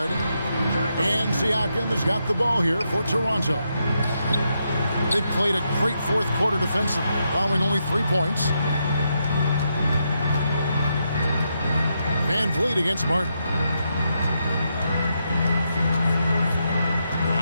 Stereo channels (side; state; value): both; inverted; correlation -0.82